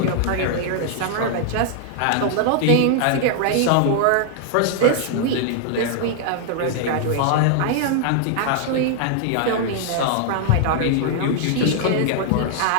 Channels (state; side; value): different; both; correlation 0.00